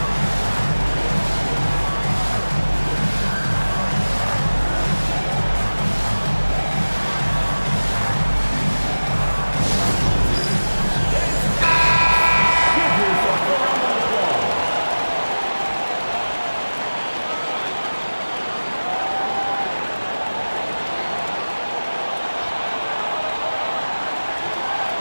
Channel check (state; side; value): inverted; both; correlation -1.00